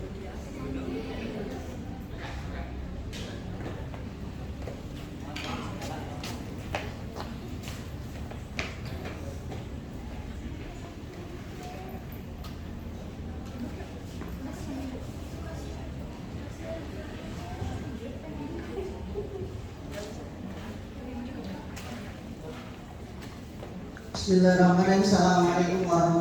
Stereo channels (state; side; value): identical; both; correlation 1.00